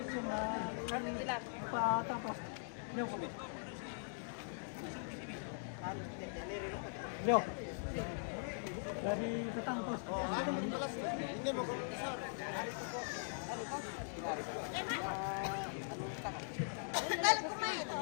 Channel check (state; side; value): silent; right; digital silence